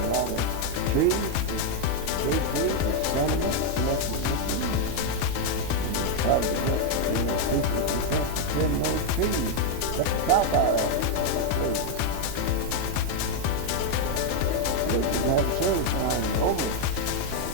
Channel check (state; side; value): different; both; correlation 0.01